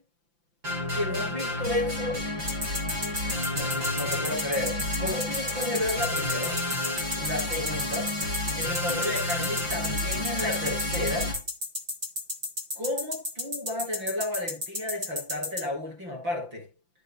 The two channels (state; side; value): late; left; 5.8 ms